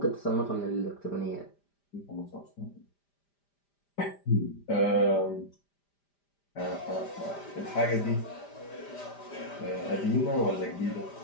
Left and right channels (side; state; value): right; late; 5.0 ms